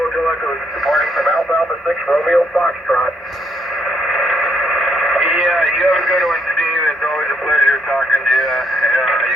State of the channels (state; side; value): normal; both; correlation 0.72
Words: Echo, departing from Alpha Alpha 6, Romeo Foxtrot. Yeah, you have